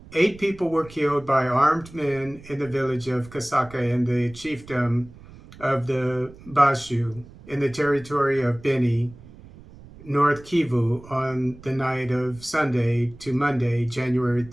8 people were killed by armed men in the village of Kasaka in the chiefdom of the Bashu in the territory of Beni, North Kivu, on the night of Sunday to Monday, January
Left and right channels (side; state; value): right; noise; rumble, 20 dB below the sound